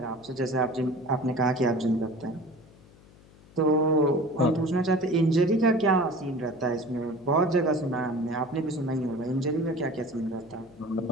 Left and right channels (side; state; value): left; noise; hum, 25 dB below the sound